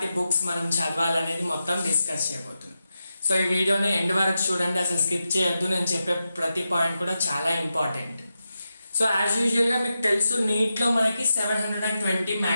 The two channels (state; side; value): inverted; both; correlation -0.90